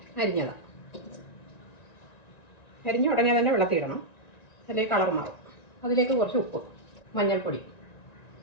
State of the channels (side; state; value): right; late; 1.9 ms